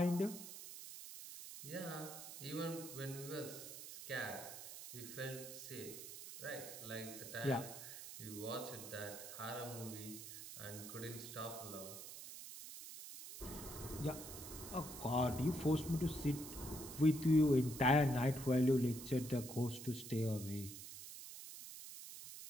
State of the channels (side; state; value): right; noise; hiss, 11 dB below the sound